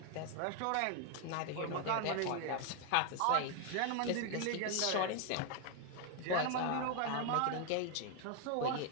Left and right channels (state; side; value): different; both; correlation 0.01